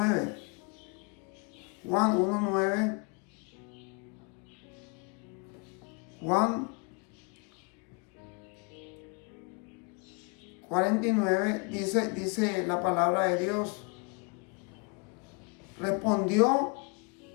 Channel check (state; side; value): quieter; right; 33.2 dB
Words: Juan 1:9, Juan 49, dice la palabra de Dios. Respondió